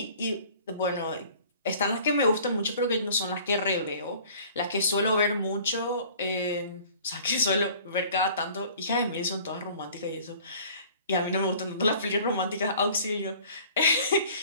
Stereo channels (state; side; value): inverted; both; correlation -0.50